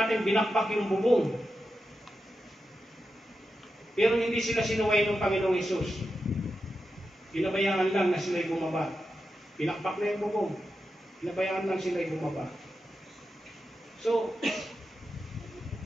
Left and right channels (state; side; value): normal; both; correlation 0.89